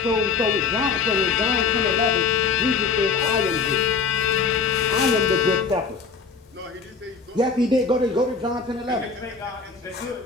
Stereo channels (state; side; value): quieter; right; 5.0 dB